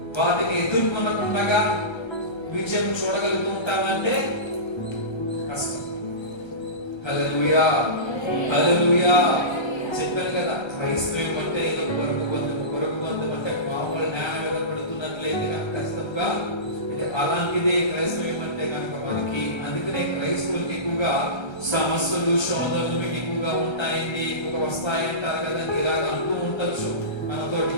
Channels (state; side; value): late; right; 1.3 ms